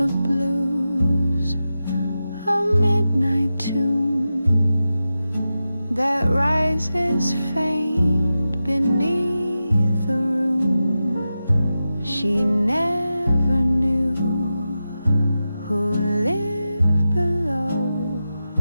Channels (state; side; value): inverted; both; correlation -0.92